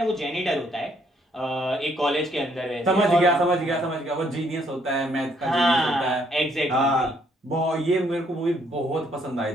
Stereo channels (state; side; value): normal; both; correlation 0.69